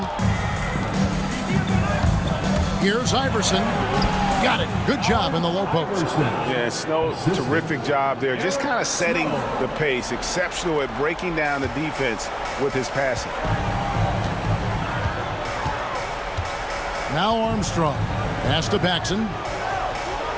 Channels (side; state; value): both; identical; correlation 1.00